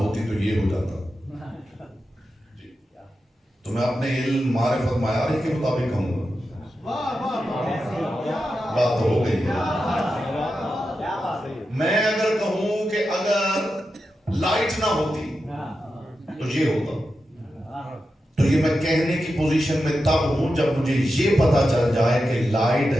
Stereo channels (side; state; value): both; normal; correlation 0.90